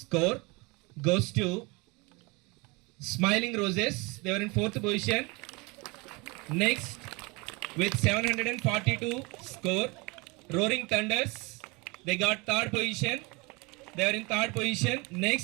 goes to Smiling Roses. They were in 4th position. Next, with 742 score, Roaring Thunders. They got 3rd position. They were in 3rd position.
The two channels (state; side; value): quieter; left; 27.0 dB